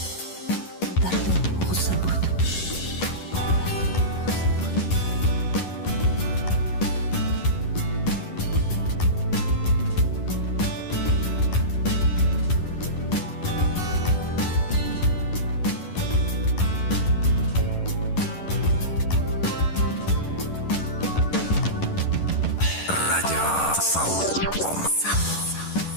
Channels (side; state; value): right; late; 11 ms